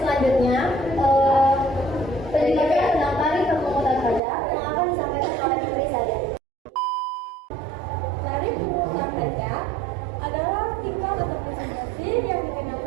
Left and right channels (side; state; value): left; drops out; at 4.2 s